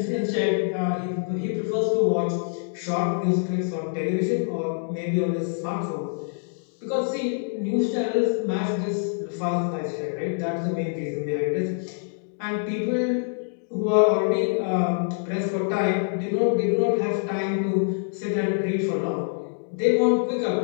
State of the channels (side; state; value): right; silent; digital silence